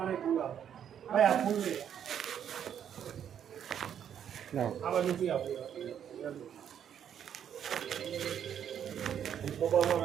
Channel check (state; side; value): quieter; left; 9.1 dB